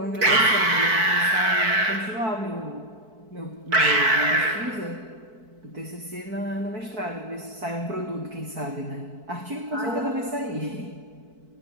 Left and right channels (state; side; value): late; left; 4.6 ms